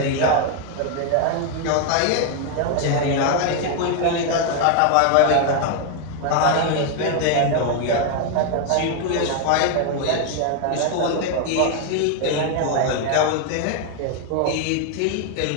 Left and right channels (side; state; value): both; different; correlation 0.01